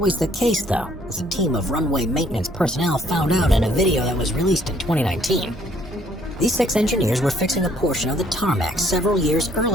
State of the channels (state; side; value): normal; both; correlation 0.64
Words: the case, though, as a team of runway maintenance personnel found out in a video that was released in 2019. These 6 engineers were fixing a portion of the tarmac several years